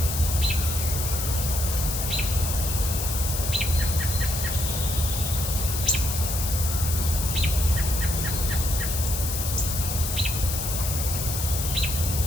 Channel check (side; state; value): left; noise; hiss, 4 dB below the sound